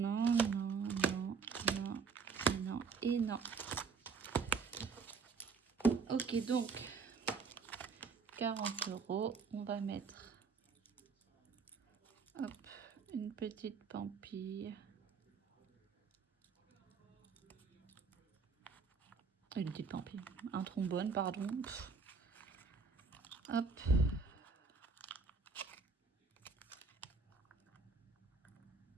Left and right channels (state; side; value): quieter; left; 5.2 dB